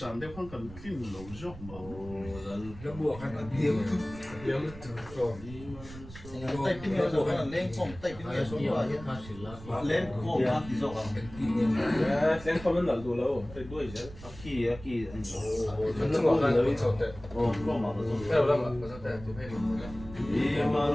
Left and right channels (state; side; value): noise; right; rumble, 15 dB below the sound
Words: đều không cần phim lâu dọc mà nó buộc hay là điếm rồi tay pin này rồi là lên không tay pin này xuống rồi lên không ăn thì rồi lên không lên đủ lâu phải đuổi chứ kỳ anh nó ngọt là nó sốt đấy không mà theo lắm mà có thể chụp hay Hãy